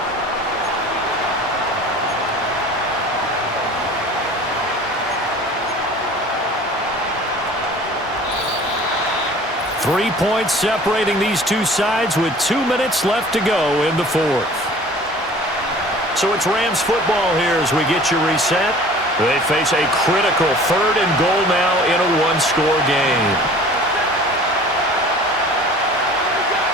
Three points separating these two sides with 2 minutes left to go in the fourth. So it's Rams football here as we get you reset. They face a critical 3rd and goal now in a one-score game.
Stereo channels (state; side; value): normal; both; correlation 0.46